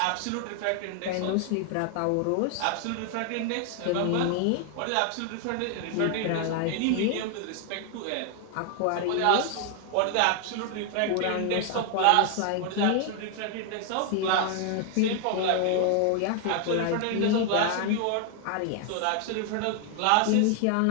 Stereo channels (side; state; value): both; different; correlation 0.00